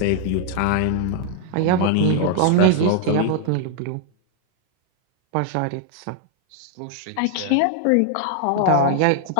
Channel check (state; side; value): different; both; correlation 0.00